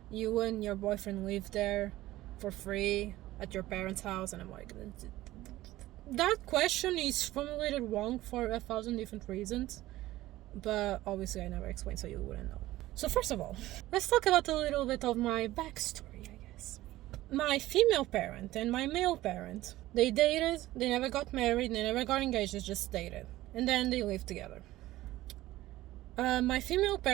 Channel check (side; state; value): left; quieter; 16.4 dB